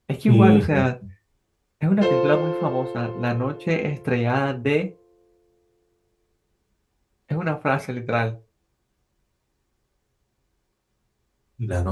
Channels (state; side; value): identical; both; correlation 1.00